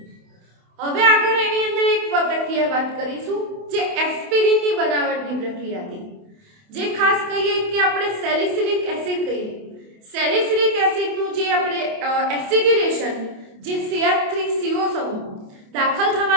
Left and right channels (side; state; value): left; late; 28 ms